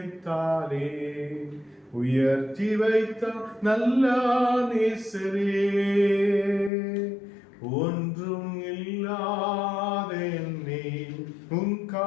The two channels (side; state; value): right; drops out; at 6.7 s